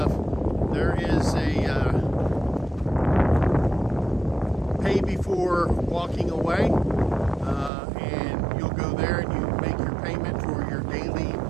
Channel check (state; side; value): drops out; left; at 7.7 s